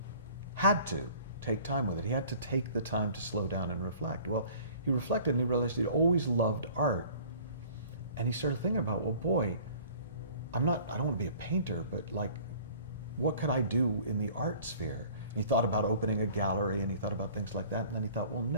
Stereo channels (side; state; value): both; inverted; correlation -0.50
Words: had to take time with it. He had to take the time to slow down and reflect. Well, he reflected and he realized he'd always loved art. And he started thinking about, well, boy, I don't want to be a painter, but like, what could I do in the art sphere? And he thought about opening a gallery, and he thought about things like that. And then he thought, well,